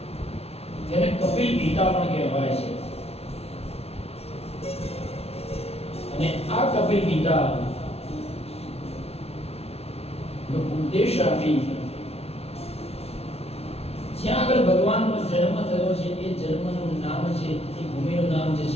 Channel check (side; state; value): right; late; 0.30 ms